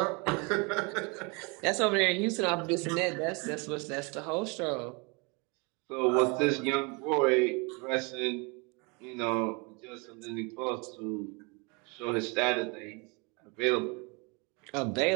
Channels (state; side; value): quieter; left; 30.5 dB